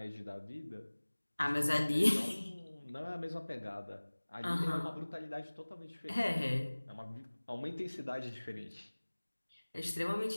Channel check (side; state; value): both; inverted; correlation -1.00